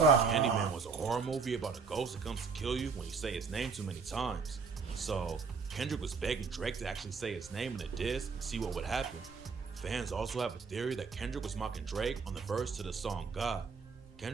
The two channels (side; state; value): left; quieter; 5.2 dB